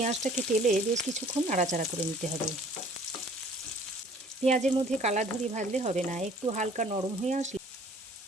তেলে বেশ কিছুক্ষণ নাড়াচাড়া করে নিতে হবে। পেঁয়াজের মধ্যে কালার ধরে ভাজলে হবে না, একটু হালকা নরম হয়ে আসলে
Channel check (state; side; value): normal; both; correlation 0.54